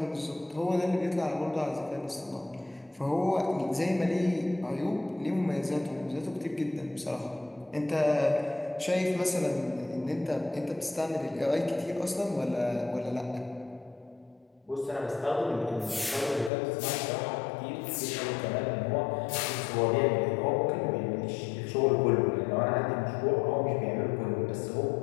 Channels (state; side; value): drops out; right; at 16.5 s